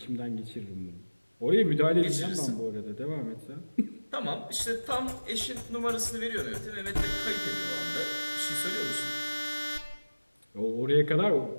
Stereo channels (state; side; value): inverted; both; correlation -1.00